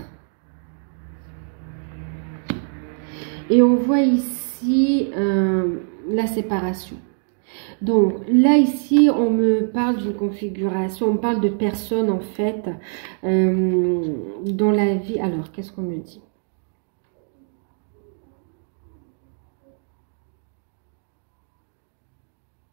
Et on voit ici la séparation. Donc là, ici, on me parle d'une configuration, on me parle de personnes en fait dans la vie. Alors, qu'est-ce qu'on me dit?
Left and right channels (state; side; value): silent; left; 57 dB below the other